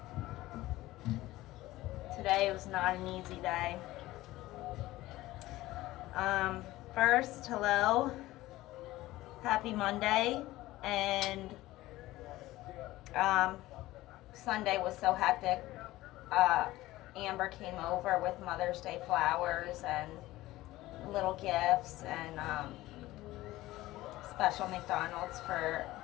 Today was not an easy day. First, hello. Happy Monday. And Sunday was so hectic. Amber came over with Mother's Day flowers and little gifts and special McDonald's for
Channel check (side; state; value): right; quieter; 17.2 dB